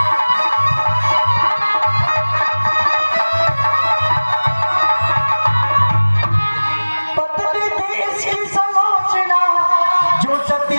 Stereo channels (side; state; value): both; inverted; correlation -1.00